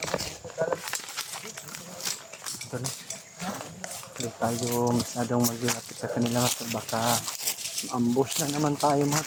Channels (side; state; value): both; identical; correlation 1.00